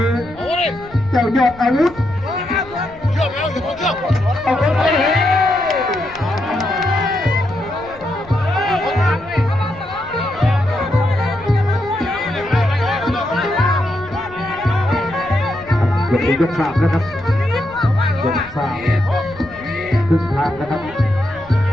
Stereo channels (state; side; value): noise; left; rumble, 21 dB below the sound